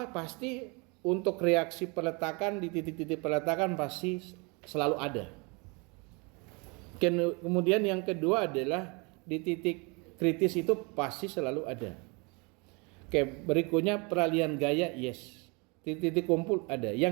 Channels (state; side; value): quieter; left; 30.1 dB